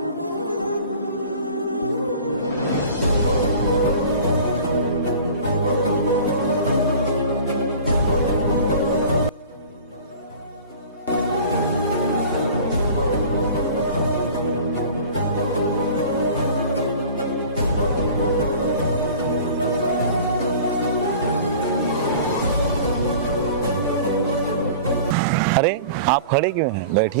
अरे आप खड़े क्यों हैं?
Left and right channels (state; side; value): inverted; both; correlation -0.42